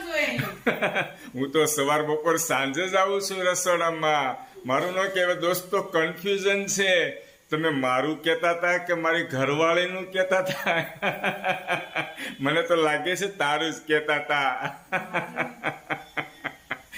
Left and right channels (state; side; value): identical; both; correlation 1.00